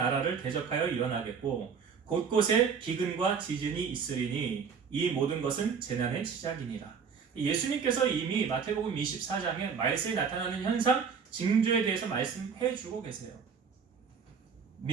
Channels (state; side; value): quieter; left; 6.2 dB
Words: 대적하여 일어나겠고 곳곳에 기근과 지진이 있으리니 이 모든 것은 재난의 시작이니라. 예수님께서 이미 마태복음 24장에 말세에 나타나는 현상, 징조에 대해서 말씀해 주고 계세요.